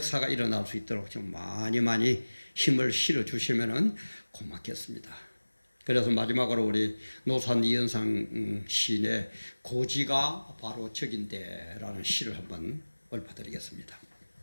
일어날 수 있도록 좀 많이 힘을 실어 주시면은 고맙겠습니다. 그래서 마지막으로 우리 노산 이현상 시인의 고지가 바로 적인데라는 시를 한번 읊어드리겠습니다.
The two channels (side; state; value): both; inverted; correlation -1.00